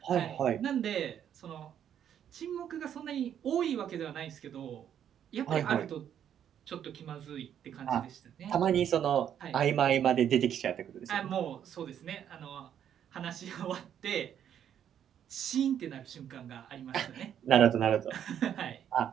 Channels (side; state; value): left; quieter; 9.5 dB